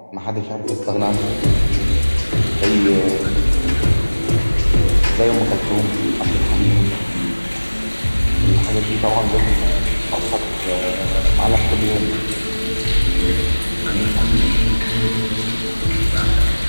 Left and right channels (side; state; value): both; inverted; correlation -1.00